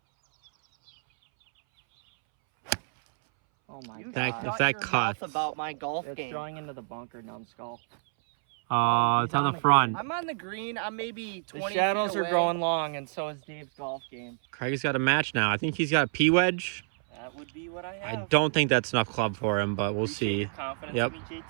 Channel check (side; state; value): left; silent; 59 dB below the other